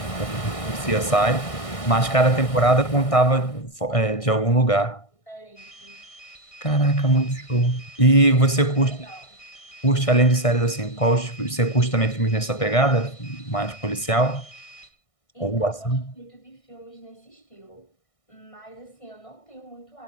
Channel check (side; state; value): right; late; 1.6 ms